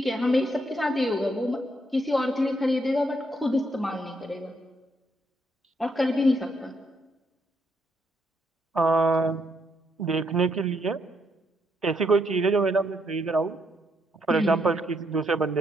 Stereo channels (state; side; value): normal; both; correlation 0.75